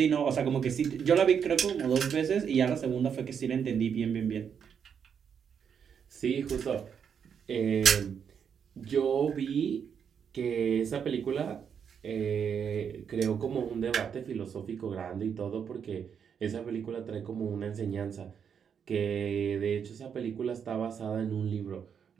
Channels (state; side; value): quieter; left; 7.4 dB